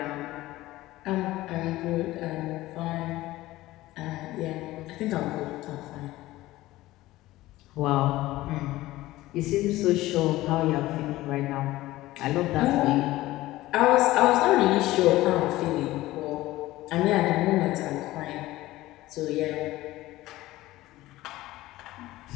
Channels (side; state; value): right; quieter; 17.1 dB